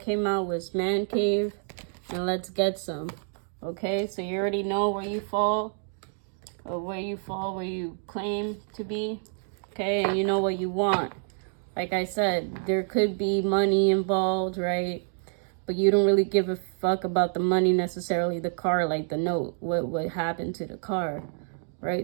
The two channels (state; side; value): silent; left; 59 dB below the other